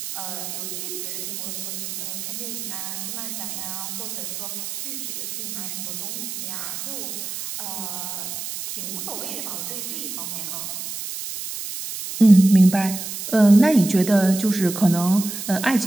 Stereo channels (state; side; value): noise; right; hiss, 7 dB below the sound